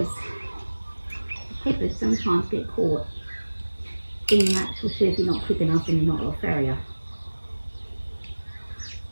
the clippers sometimes get caught in the actual shoe if you're not quick enough and you're not a farrier.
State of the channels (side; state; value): both; inverted; correlation -1.00